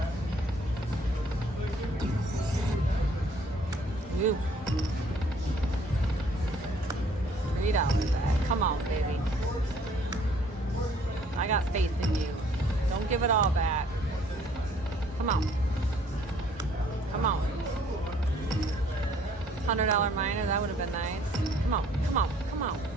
Ooh. $3 bet. Come on, baby. I got faith in you. Don't give it all back. Come on. Come on. $100 minor, that would have been nice. Come on, come on, come on.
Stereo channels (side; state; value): both; normal; correlation 0.60